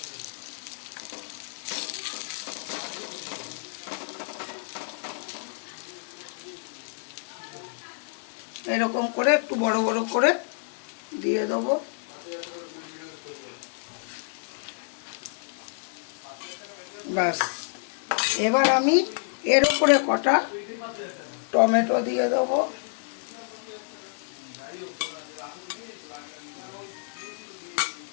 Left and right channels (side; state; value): right; silent; 59 dB below the other